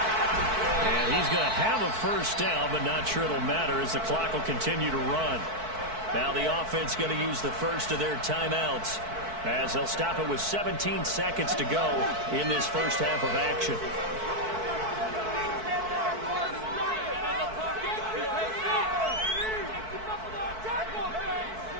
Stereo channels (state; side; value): late; left; 4.6 ms